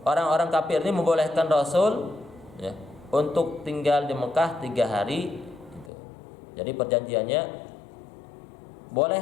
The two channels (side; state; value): right; drops out; at 5.9 s